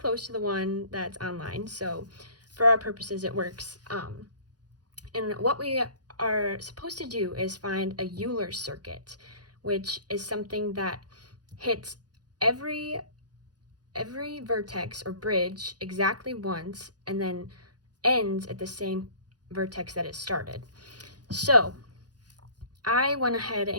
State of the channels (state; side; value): late; left; 0.69 ms